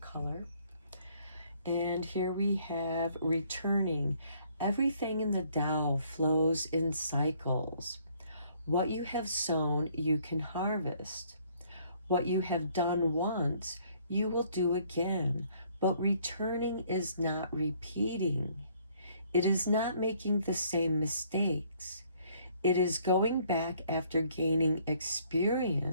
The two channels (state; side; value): inverted; both; correlation -0.63